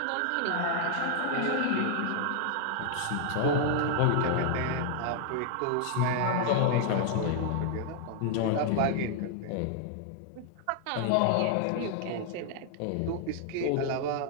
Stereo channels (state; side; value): different; both; correlation 0.00